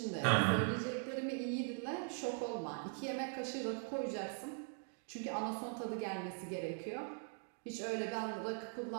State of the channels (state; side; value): silent; left; 50 dB below the other